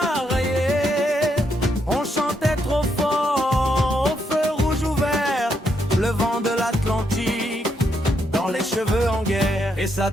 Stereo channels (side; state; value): both; normal; correlation 0.78